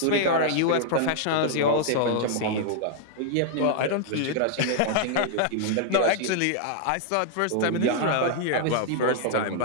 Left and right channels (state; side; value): different; both; correlation -0.01